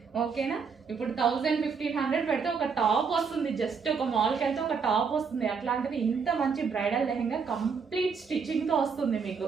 ఓకేనా, ఇప్పుడు 1000-1500 పెడితే ఒక టాప్ వస్తుంది. జస్ట్ ఒక మాల్కి వెళ్తే ఒక టాప్ వస్తుంది. అట్లాంటిది ఇంత మంచి బ్రైడల్ లెహెంగా కంప్లీట్ స్టిచ్చింగ్తో వస్తుంది మీకు.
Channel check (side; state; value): left; quieter; 5.8 dB